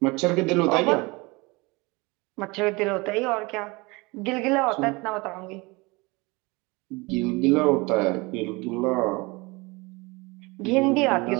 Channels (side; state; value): left; quieter; 25.1 dB